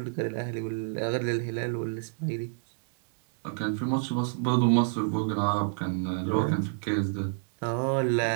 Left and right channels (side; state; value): left; silent; digital silence